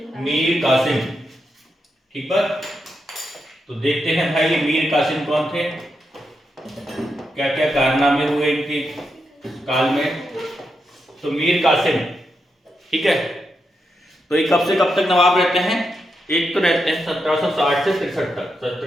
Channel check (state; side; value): normal; both; correlation 0.84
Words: मीर कासिम। ठीक बात। तो देखते हैं भाई ये मीर कासिम कौन थे, क्या क्या कारनामे हुए इनके काल में। तो मीर कासिम, ठीक है, तो ये कब से कब तक नवाब रहते हैं? एक तो रहते हैं 1760 से 63 तक,